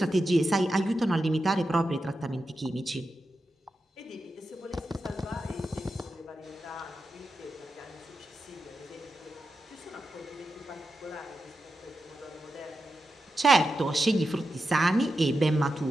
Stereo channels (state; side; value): normal; both; correlation 0.89